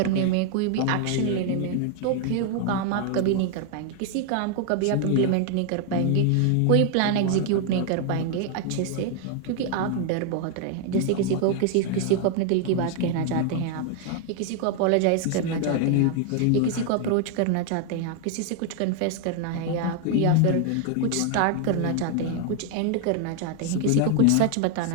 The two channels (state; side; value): different; both; correlation 0.00